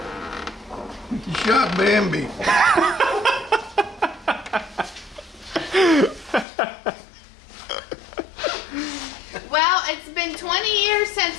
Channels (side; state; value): right; drops out; at 6.5 s